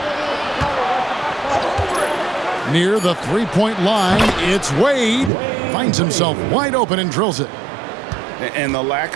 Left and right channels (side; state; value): left; drops out; at 5.3 s